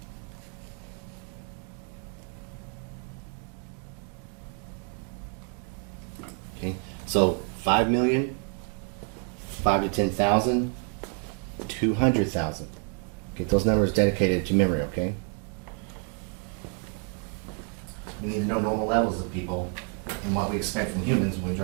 Okay, so 5 million, 5 to 10,000, 200,000. Get those numbers dedicated to memory, okay? We need to know normal levels of people and what we expect from humans when we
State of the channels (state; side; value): quieter; left; 38.3 dB